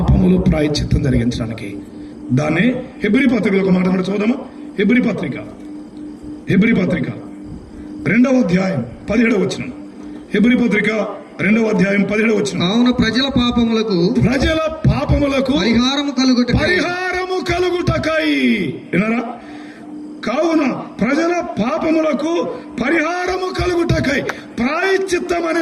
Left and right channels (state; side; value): identical; both; correlation 1.00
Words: ప్రాయశ్చిత్తం జరిగించడానికి. దాన్ని హెబ్రీ పత్రికలో ఒక మాట మనం చూద్దామా? హెబ్రీ పత్రిక 2వ అధ్యాయం 17వ వచనం. హెబ్రీ పత్రిక 2వ అధ్యాయం 17వ వచనం. కావున ప్రజల పాపములకు పరిహారము కలుగుటకై. విన్నారా? కావున ప్రజల పాపములకు పరిహారము కలుగుటకై. ప్రాయశ్చిత్తం అనే